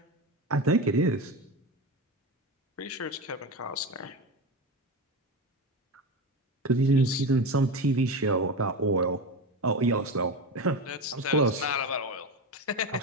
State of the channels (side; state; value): both; normal; correlation 0.21